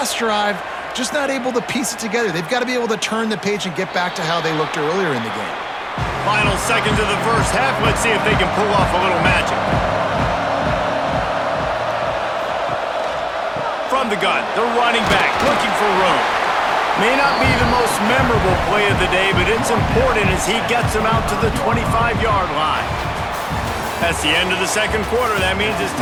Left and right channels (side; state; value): both; identical; correlation 1.00